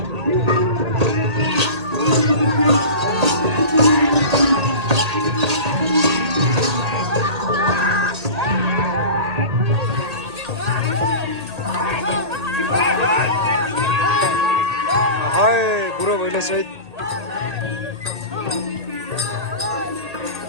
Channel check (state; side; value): late; left; 1.8 ms